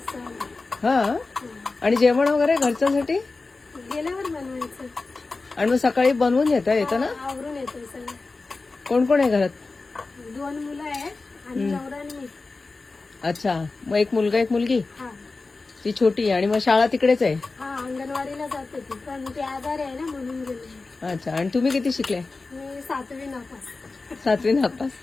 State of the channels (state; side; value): quieter; right; 3.7 dB